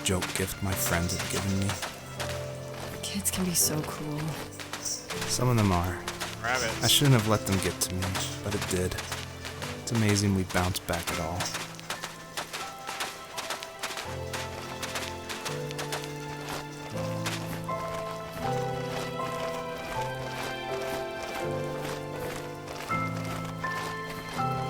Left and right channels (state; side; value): identical; both; correlation 1.00